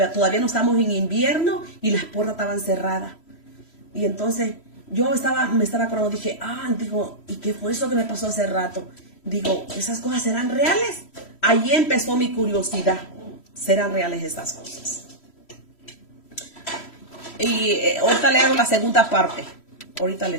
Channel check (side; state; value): right; late; 3.1 ms